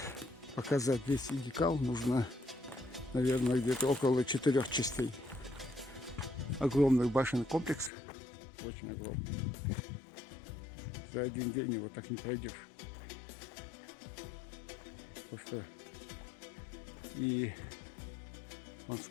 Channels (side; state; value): right; drops out; at 7.9 s